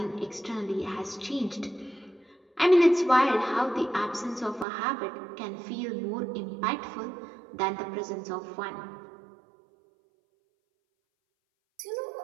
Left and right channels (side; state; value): left; drops out; at 4.7 s